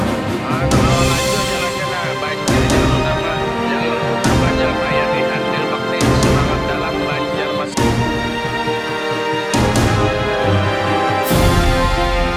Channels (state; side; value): identical; both; correlation 1.00